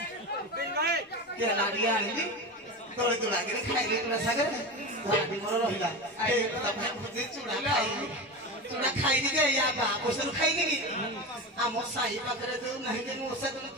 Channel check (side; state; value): both; normal; correlation 0.23